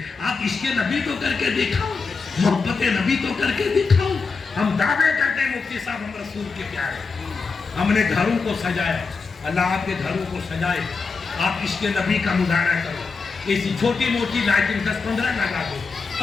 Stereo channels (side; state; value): right; quieter; 4.7 dB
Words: آپ عشق نبی تو کر کے دکھاؤ، محبت نبی تو کر کے دکھاؤ۔ ہم دعوے کرتے ہیں مفتی صاحب ہم رسول کے پیارے، ہم نے گھروں کو سجایا، اللہ آپ کے گھروں کو سجائے، آپ عشق نبی کا مظاہرہ کرو، ایسی چھوٹی موٹی لائٹنگ 10-15 لگا دو،